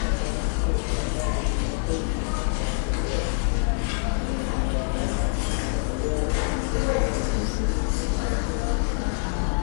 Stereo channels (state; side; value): silent; right; 59 dB below the other